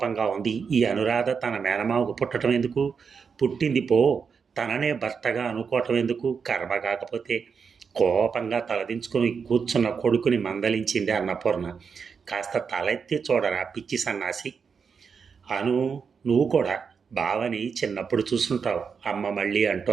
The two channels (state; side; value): quieter; left; 6.0 dB